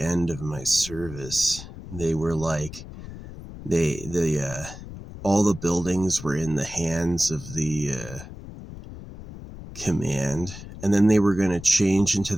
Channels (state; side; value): noise; left; rumble, 13 dB below the sound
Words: of my service, they were like, all the buildings were in the hands of the command, and then they were going to change into